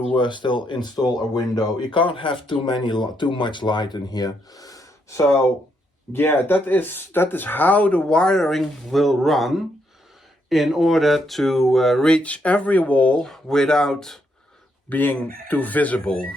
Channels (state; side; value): normal; both; correlation 0.77